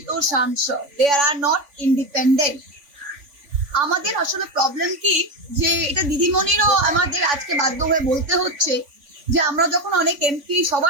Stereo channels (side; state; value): left; late; 3.5 ms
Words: সাংসদ, দে আর নট ইন্ডিপেন্ডেন্ট। আমাদের আসলে প্রবলেম কি, যে এটা দিদিমণিরও আমাদের আজকে বাধ্য হয়ে বলতে হচ্ছে, যে আমরা যখন অনেক এমপি,